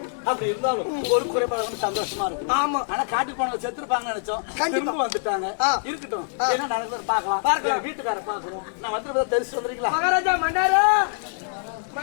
அப்படி இருந்தாலும் ஒரு குறைபாடு சந்தோஷமா இருக்கும். ஆமா. ஆனா காட்டுக்கு போனவங்க செத்துருப்பாங்க நினைச்சோம். திரும்ப வந்துட்டாங்க. இருக்கட்டும் என்ன நடக்குது பாக்கலாம். வீட்டுக்கார பாக்கணும். நான் வந்து தெரிச்சு வந்துறீங்களா? மகாராஜா மன்னாரு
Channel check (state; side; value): silent; right; digital silence